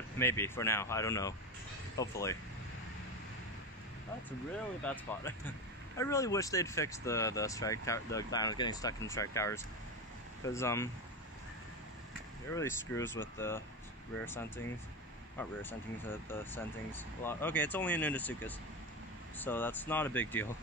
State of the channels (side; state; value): both; normal; correlation 0.19